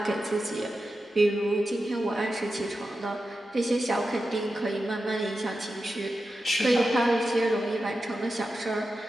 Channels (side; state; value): both; normal; correlation 0.91